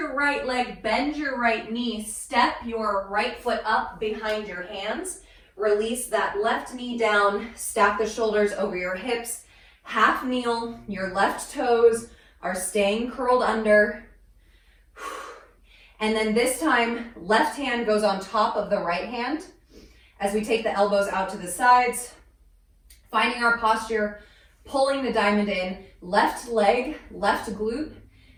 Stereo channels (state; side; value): identical; both; correlation 1.00